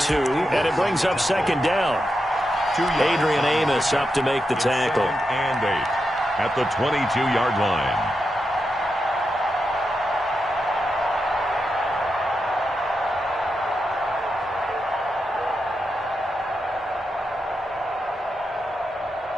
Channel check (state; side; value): normal; both; correlation 0.87